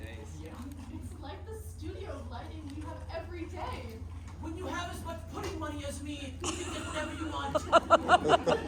It's like the studio lighting we have every day. When you have as much pudding money as me, you can get whatever you want.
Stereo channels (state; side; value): identical; both; correlation 1.00